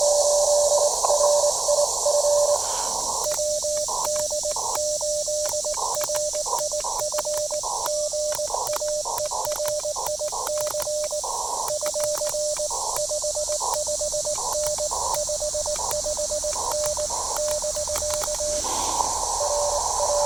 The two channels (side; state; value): left; quieter; 3.3 dB